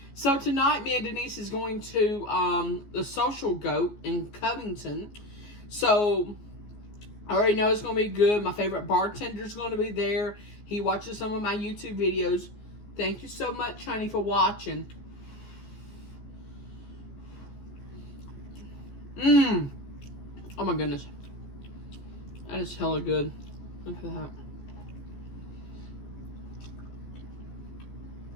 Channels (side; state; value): right; late; 14 ms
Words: So tonight, me and Denise is going to the Social Goat in Covington. So I already know it's going to be good. My favorite bartender's going to be there. He watches some of my YouTube videos. Thank you so much, honey, for watching. Oh my goodness. That is hella good. Look at that.